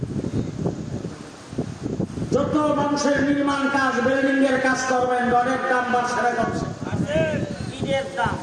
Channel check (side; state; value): both; identical; correlation 1.00